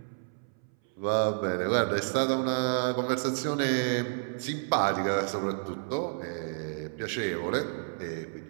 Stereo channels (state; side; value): silent; left; 58 dB below the other